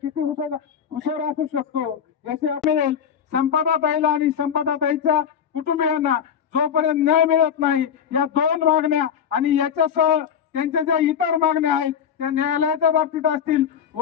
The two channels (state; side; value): quieter; right; 8.1 dB